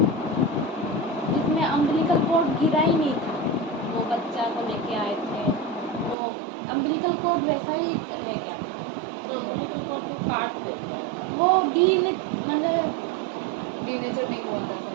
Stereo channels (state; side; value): drops out; left; at 6.2 s